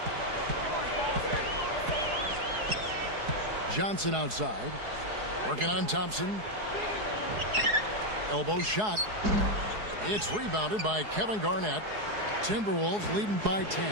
Johnson outside. Working on Thompson. Elbow shot. It's rebounded by Kevin Garnett. Timberwolves leading by 10.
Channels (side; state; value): left; late; 4.7 ms